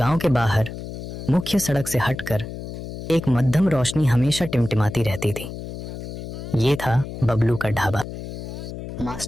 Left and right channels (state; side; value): noise; left; hum, 9 dB below the sound